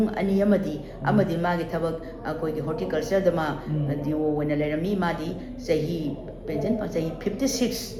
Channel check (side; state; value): both; identical; correlation 1.00